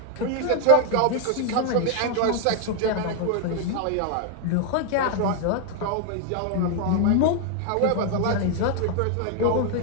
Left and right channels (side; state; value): both; different; correlation 0.00